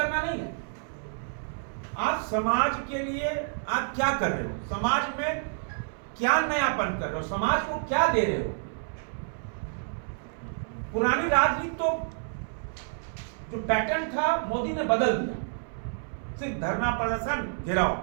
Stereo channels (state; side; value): silent; left; 59 dB below the other